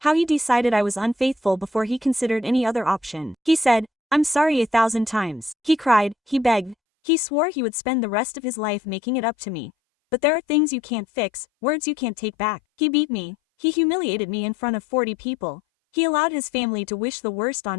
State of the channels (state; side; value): drops out; right; at 6.8 s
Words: how he decided I was unfaithful before he considered any other option. He said, "I'm sorry 1,000 times. He cried, he begged, he swore he would spend the rest of his life making it up to me. But there are things you can't fix, words you can't take back. He beat me, he humiliated me in front of 40 people, he allowed his family to wish the worst